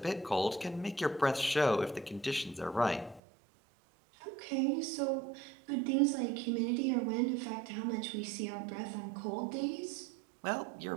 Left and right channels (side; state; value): left; drops out; at 3.2 s